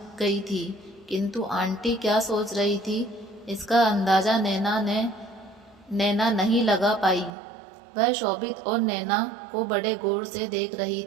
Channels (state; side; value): drops out; left; at 7.3 s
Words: गई थी, किंतु आंटी क्या सोच रही थी इसका अंदाज़ा नैना नहीं लगा पाई। वह शोभित और नैना को बड़े गौर से देख रही